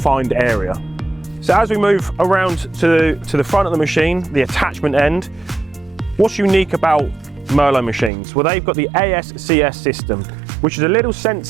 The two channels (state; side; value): drops out; left; at 8.1 s